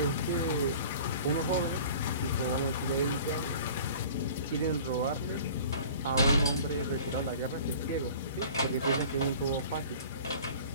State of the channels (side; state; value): both; inverted; correlation -0.44